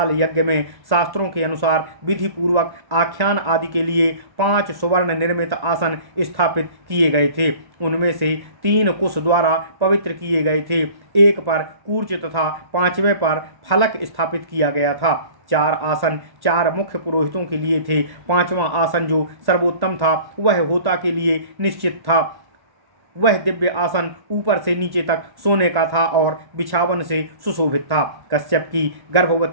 यज्ञ में शास्त्रों के अनुसार विधि पूर्वक आख्यान आदि के लिए 5 सुवर्ण निर्मित आसन स्थापित किए गए थे। उनमें से 3 कुश द्वारा पवित्र किए गए थे, एक पर कूर्च तथा 5वें पर फलक स्थापित किया गया था। 4 आसन 4 मुख्य पुरोहितों के लिए थे। 5वां आसन जो सर्वोत्तम था वह होता के लिए निश्चित था। वह दिव्य आसन ऊपर से नीचे तक सोने का था और बिछावन से सुशोभित था। कश्यप की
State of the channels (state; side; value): late; left; 1.1 ms